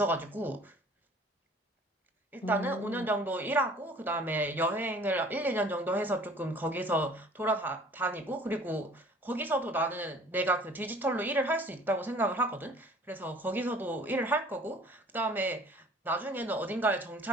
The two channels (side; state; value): both; normal; correlation 0.51